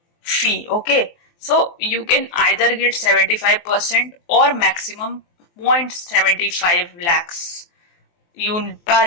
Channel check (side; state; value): right; late; 23 ms